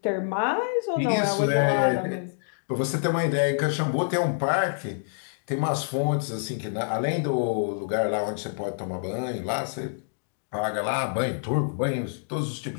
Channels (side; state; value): right; silent; digital silence